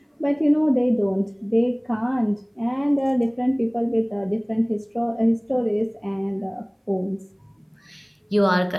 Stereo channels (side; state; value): both; identical; correlation 1.00